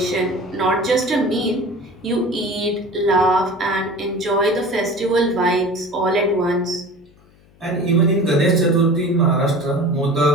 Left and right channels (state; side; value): noise; left; hum, 29 dB below the sound